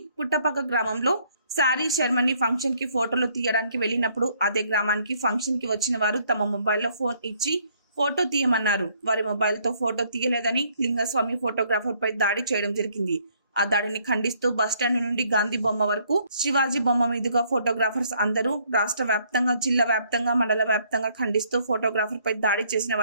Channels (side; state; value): both; inverted; correlation -0.66